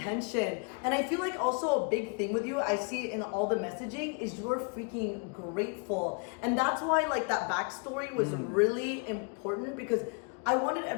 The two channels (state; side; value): quieter; right; 37.2 dB